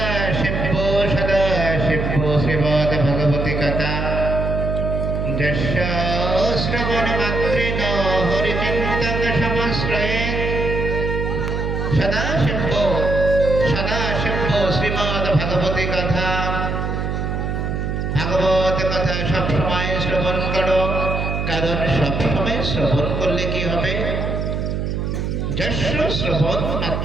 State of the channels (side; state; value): right; noise; hum, 1 dB below the sound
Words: শিব্য শ্রীমদ ভগবতী কথা যস্য শ্রবণ মাত্রেণ হরিচিন্তন সমাশ্রয়ে। সদা শিব্য শ্রীমদ ভগবতী কথা, ভাগবত কথা সবসময় শ্রবণ করো। কারণ সবসময় শ্রবণ করলে কি হবে? যস্য শ্রবণ